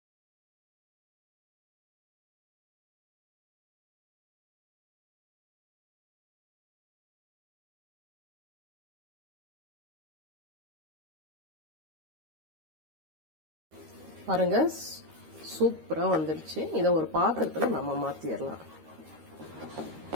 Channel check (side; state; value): left; late; 13 ms